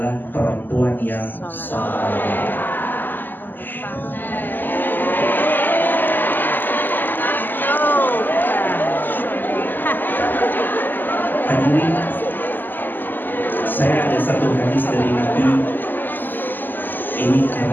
perempuan yang saleh. Hadirin, saya ada satu hadis dari Nabi. Ini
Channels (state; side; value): late; right; 0.091 ms